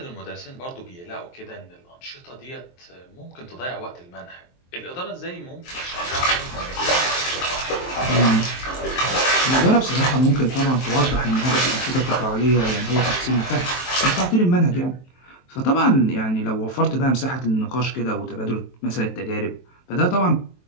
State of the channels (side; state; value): right; late; 23 ms